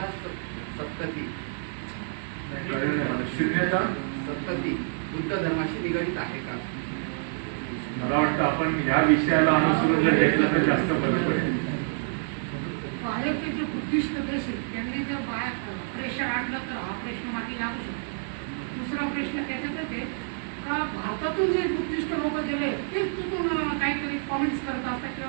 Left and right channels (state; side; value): silent; left; 57 dB below the other